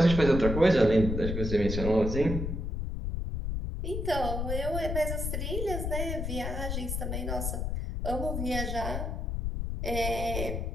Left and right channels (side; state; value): left; noise; rumble, 2 dB below the sound